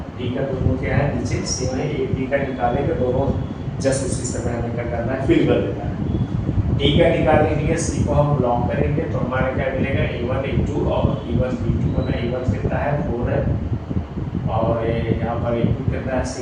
t का दोनों क्या है नीचे सेम है, एक t का निकालेंगे दोनों जस्ट उसी समय हमें क्या करना है, फिल कर देना है। टी का निकालने के लिए सी को हम लॉन्ग करेंगे तो हमारा क्या मिलेगा, a1 a2 और e1 b2 बना। a1 कितना है 4 है और यहाँ पर a2 कितना है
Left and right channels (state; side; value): identical; both; correlation 1.00